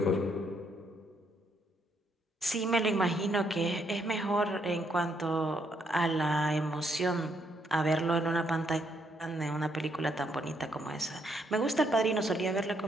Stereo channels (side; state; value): both; normal; correlation 0.74